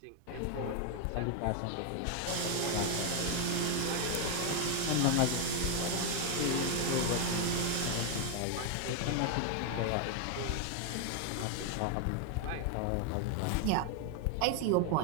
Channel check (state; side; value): different; both; correlation 0.00